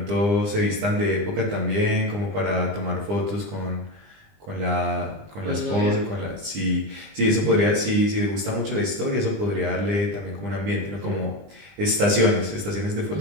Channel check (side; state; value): left; late; 20 ms